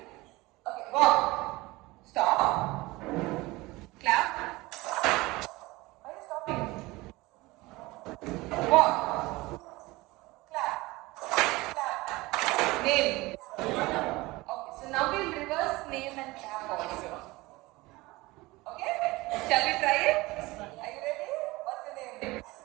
Okay, walk. Stop. Clap. Why are you stopping? Walk. Name. Okay, so now we'll reverse name and clap also. Okay? Shall we try it? Are you ready? What's your name?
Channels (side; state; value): left; quieter; 21.1 dB